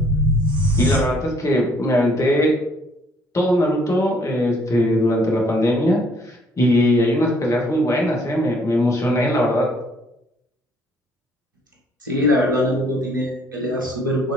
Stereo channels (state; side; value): normal; both; correlation 0.64